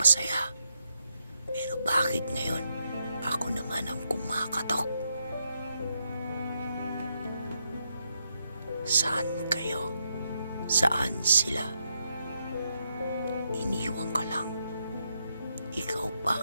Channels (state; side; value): inverted; both; correlation -0.80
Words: Pero bakit ngayon ako naman ang kumakatok? Saan kayo? Saan sila? Iniwan ka lang. Ikaw pa